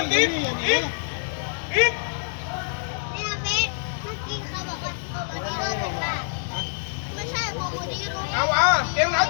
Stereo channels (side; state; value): right; silent; digital silence